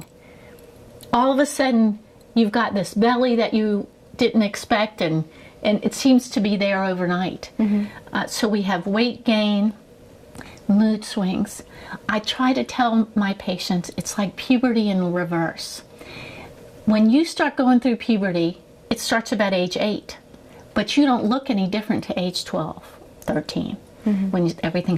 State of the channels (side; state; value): both; identical; correlation 1.00